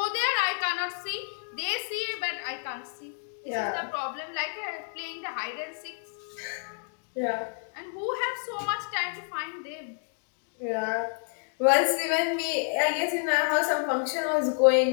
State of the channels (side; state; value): right; silent; digital silence